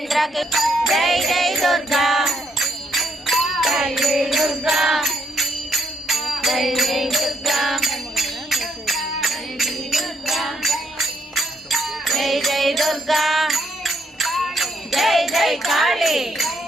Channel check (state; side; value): normal; both; correlation 0.73